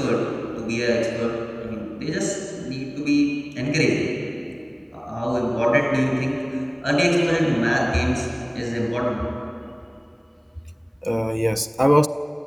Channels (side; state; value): both; identical; correlation 1.00